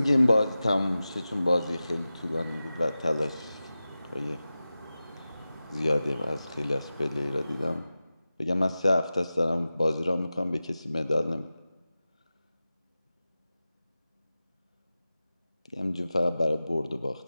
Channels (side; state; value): both; inverted; correlation -0.95